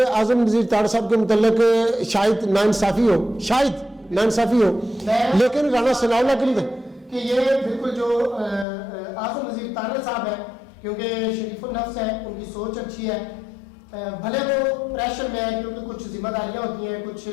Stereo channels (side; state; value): right; drops out; at 8.7 s